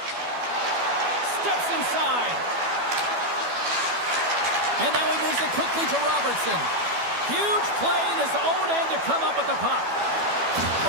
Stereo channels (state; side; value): late; left; 12 ms